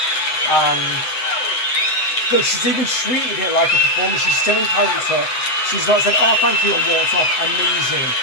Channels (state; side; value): late; right; 7.9 ms